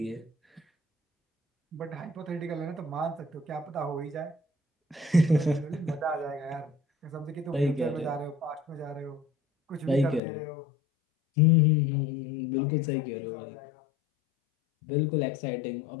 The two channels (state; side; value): drops out; right; at 10.2 s